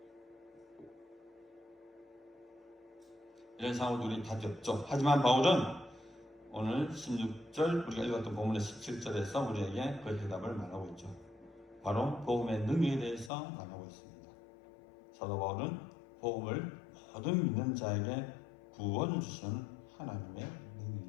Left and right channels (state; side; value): drops out; right; at 13.3 s